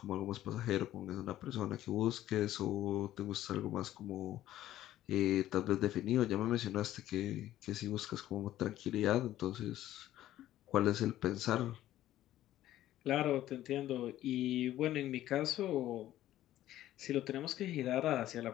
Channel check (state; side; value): quieter; right; 13.6 dB